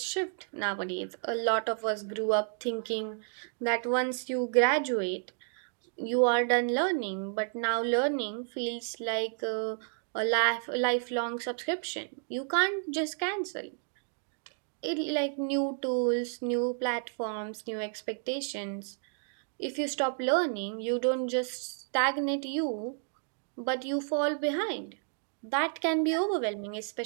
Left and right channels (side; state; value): left; silent; 57 dB below the other